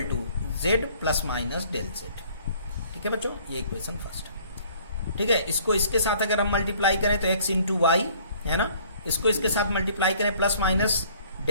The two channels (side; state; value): both; inverted; correlation -0.57